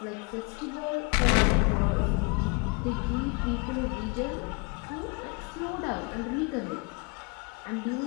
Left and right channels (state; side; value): quieter; right; 31.3 dB